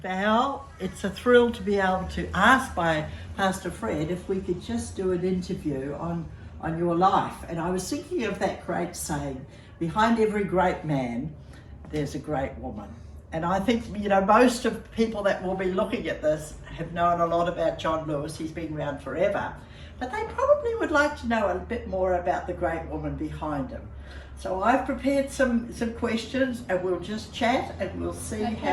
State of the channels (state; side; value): identical; both; correlation 1.00